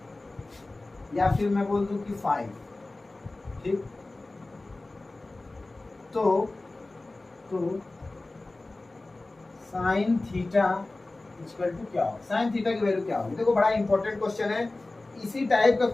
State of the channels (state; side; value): quieter; right; 3.0 dB